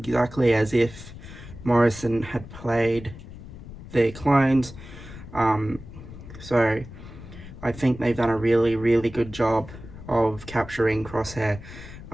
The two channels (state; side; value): noise; left; rumble, 14 dB below the sound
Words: as if Morrison had played their clones. So I think they've done a really good job of capturing Crosshair